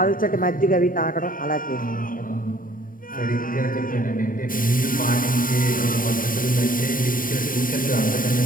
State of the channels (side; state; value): right; late; 0.40 ms